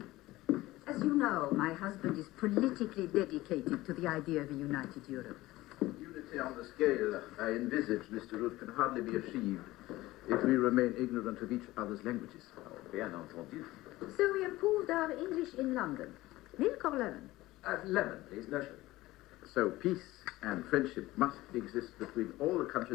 As you know, my husband is politically dedicated to the idea of a united Europe. Unity on the scale I envisage, Mr. Root, can hardly be achieved if we remain ignorant of each other's languages. Oh, bien entendu. So we improved our English in London. Milk or lemon? Lemon, please, no sugar. So peace and friendship must exist between all the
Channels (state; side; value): quieter; right; 18.0 dB